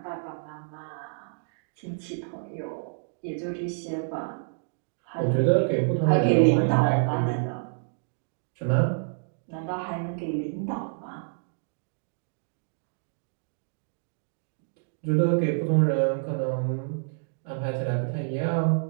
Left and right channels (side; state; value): left; silent; digital silence